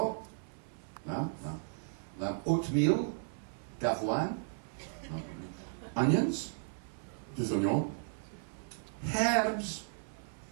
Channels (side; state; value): left; silent; 54 dB below the other